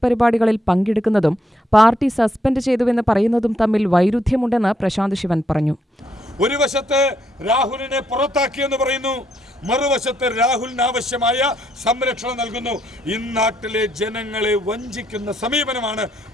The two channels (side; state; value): both; normal; correlation 0.75